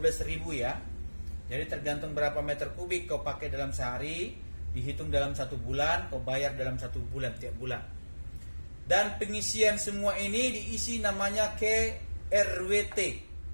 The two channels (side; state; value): both; inverted; correlation -1.00